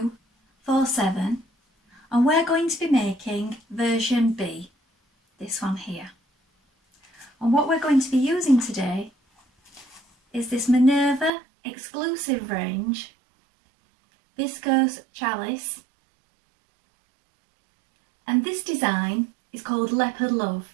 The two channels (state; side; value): drops out; left; at 11.3 s